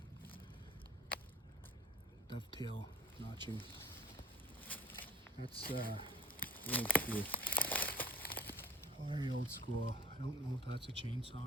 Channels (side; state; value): both; normal; correlation 0.46